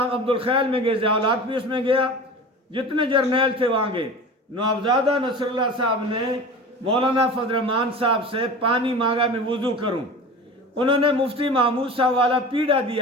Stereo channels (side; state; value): both; normal; correlation 0.34